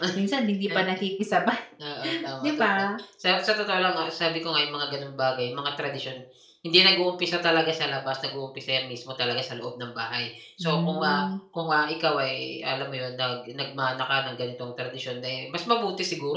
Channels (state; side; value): identical; both; correlation 1.00